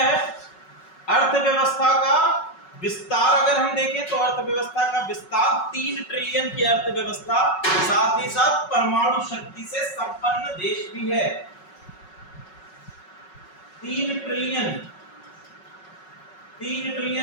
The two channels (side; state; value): right; late; 5.4 ms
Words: है? अर्थव्यवस्था का विस्तार। अगर हम देखें तो अर्थव्यवस्था का विस्तार, 3 ट्रिलियन की अर्थव्यवस्था, साथ ही साथ परमाणु शक्ति से संपन्न देश भी है। 3 ट्रिलियन